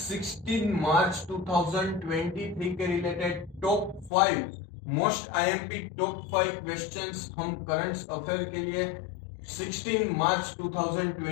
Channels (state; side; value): drops out; right; at 4.1 s